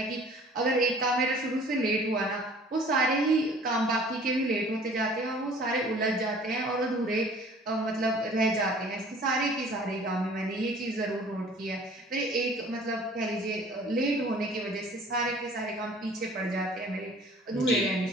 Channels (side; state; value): both; normal; correlation 0.51